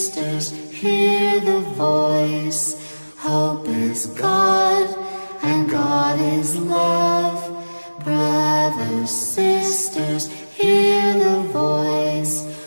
hear the voice. Hope is God, and God is love. Brothers, sisters, hear the voice.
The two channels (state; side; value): inverted; both; correlation -1.00